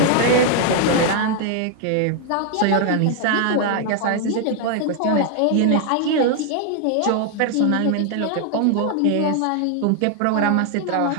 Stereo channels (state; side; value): different; both; correlation 0.00